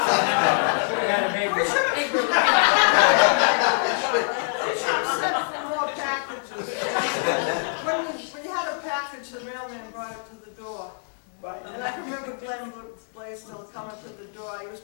We should have sent for more packages. When you had a package, the mailman brought it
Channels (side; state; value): right; silent; digital silence